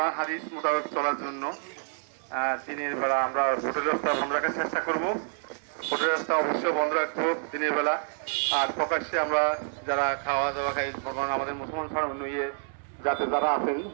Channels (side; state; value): left; silent; 59 dB below the other